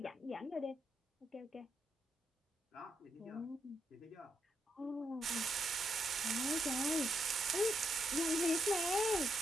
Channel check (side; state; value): both; normal; correlation 0.79